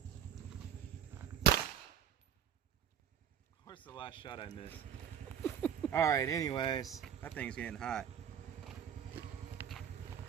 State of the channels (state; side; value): quieter; left; 8.9 dB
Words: Of course, the last shot I missed. Alright, anyways, that thing's getting hot.